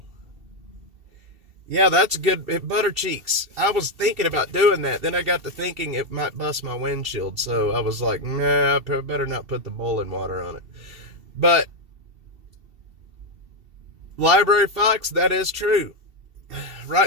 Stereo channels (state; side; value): late; left; 2.7 ms